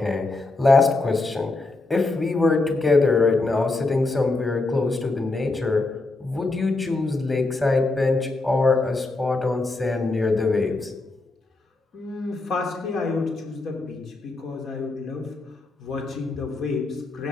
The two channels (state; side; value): quieter; right; 3.2 dB